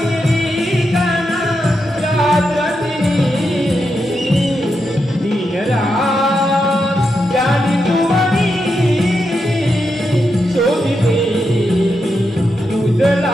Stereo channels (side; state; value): both; normal; correlation 0.85